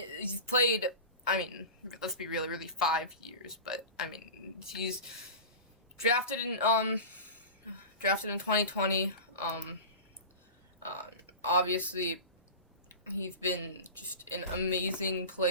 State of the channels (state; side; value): inverted; both; correlation -0.31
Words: played, let's be real, really 5 years, but, he's drafted in 2020, obviously, he's been just an amazing